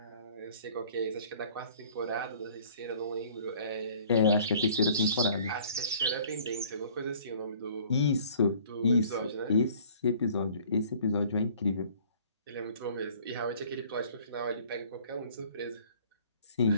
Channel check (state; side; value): inverted; both; correlation -0.53